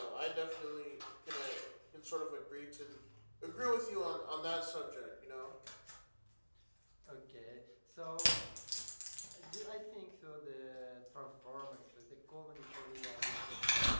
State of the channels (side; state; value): both; inverted; correlation -1.00